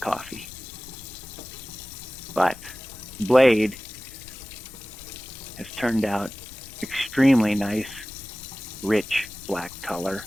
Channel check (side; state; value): left; noise; rumble, 19 dB below the sound